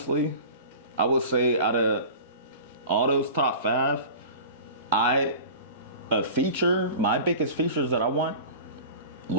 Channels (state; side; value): inverted; both; correlation -0.37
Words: I would say out of all those top 5, my biggest features that I want,